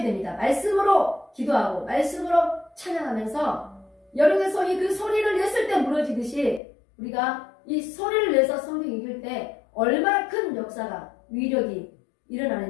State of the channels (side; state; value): right; drops out; at 6.6 s